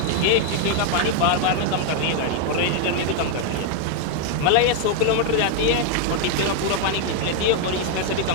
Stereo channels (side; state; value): both; different; correlation 0.00